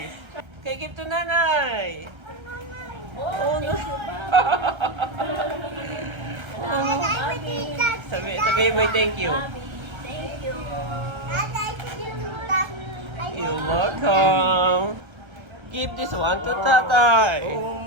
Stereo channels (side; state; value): left; late; 1.3 ms